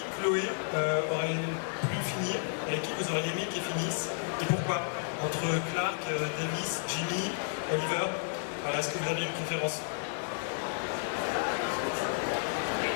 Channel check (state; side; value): silent; right; digital silence